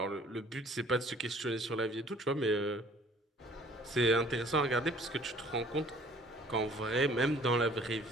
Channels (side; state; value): both; normal; correlation 0.54